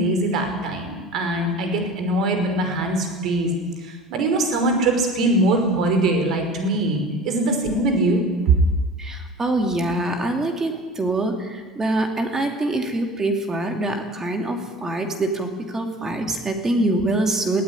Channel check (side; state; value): both; normal; correlation 0.41